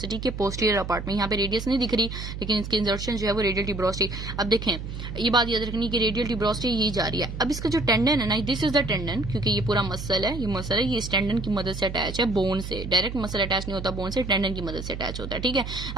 के पोस्टीरियर अपार्ट में। यहाँ पे रेडियस नहीं दिख रही, लेकिन इसकी इंसर्शन जो है वो रेडियल ट्यूबरोसिटी। अब देखें ये बात याद रखनी कि रेडियल ट्यूबरोसिटी यही जा रही है। अब इसका जो टेंडन है ना, दिस इज द टेंडन, क्योंकि ये पूरा मसल है, ये मसल है, ये इस टेंडन की मदद से अटैच है बोन से। डायरेक्ट मसल अटैच नहीं होता बोन से, टेंडन की मदद से अटैच होता है, ठीक है।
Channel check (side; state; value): right; noise; hum, 7 dB below the sound